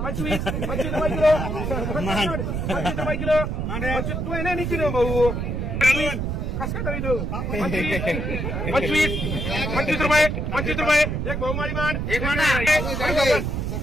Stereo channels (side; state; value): right; noise; rumble, 2 dB below the sound